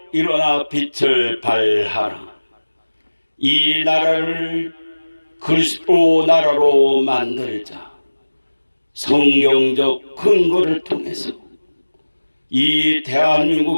일어나 빛을 발하라. 이 나라를 그리스도 나라로 만들자. 성경적 근거를 통해서 이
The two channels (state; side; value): inverted; both; correlation -1.00